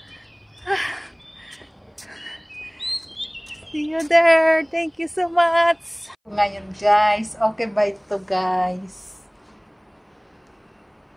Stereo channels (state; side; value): identical; both; correlation 1.00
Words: See you there! Thank you so much! Ngayon guys, okay ba ito guys?